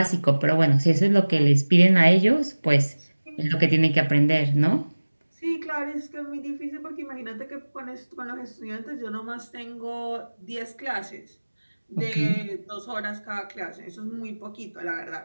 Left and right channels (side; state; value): both; inverted; correlation -1.00